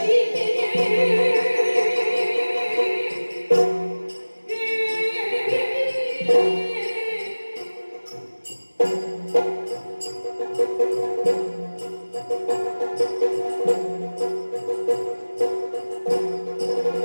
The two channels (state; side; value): inverted; both; correlation -1.00